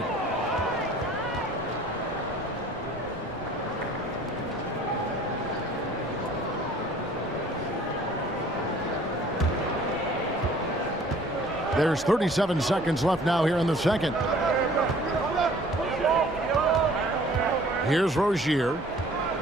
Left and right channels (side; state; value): both; normal; correlation 0.53